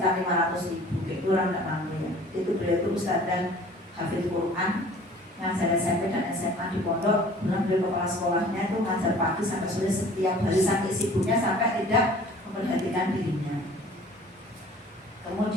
500.000. Itu orang nggak mampu ya. Itu beliau itu Ustaz dan Hafidz Quran. Ngajar SMP dan SMA di pondok, bilang beliau kepala sekolahnya itu ngajar pagi sampai sore setiap hari sampai sibuknya sampai tidak memperhatikan dirinya.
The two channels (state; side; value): normal; both; correlation 0.49